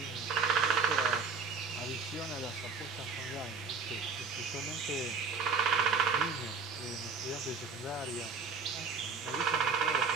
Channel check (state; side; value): quieter; left; 4.9 dB